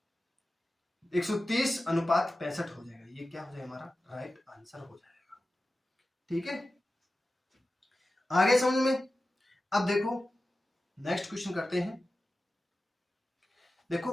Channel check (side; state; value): both; normal; correlation 0.94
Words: 130:65 हो जाएगा। ये क्या हो जाएगा हमारा राइट आंसर हो जाएगा, ठीक है। आगे समझ में। अब देखो नेक्स्ट क्वेश्चन करते हैं। देखो